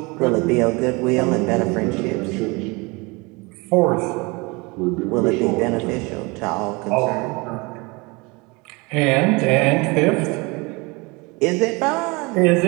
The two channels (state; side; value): quieter; left; 26.4 dB